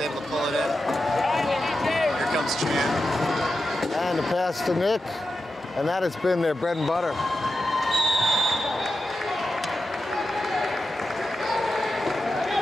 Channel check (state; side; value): normal; both; correlation 0.90